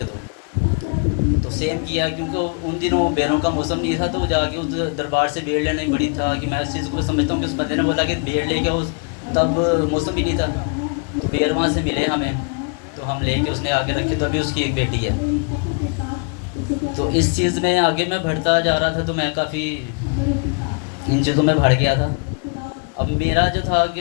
दो। तो सेम किया, क्योंकि उन दिनों बेरों का मौसम नहीं था। तो जाके उस दरबार से बेड़ लेना ही बड़ी था कि मैं इस चीज़ को समझता हूँ कि उस बंदे ने बोला कि बेड़ ले गया, उस तब मौसम भी नहीं था। तो बेड़ वहाँ से मिले हमें, तो हम लेके उसने आगे रखे। तो अभी उसकी एक बेटी है। तो इस चीज़ में आगे मैं बढ़ता जा रहा था, तो मैं काफ़ी इन चीज़ों में बढ़ गया था। अब मेरा जो था कि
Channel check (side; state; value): right; quieter; 39.0 dB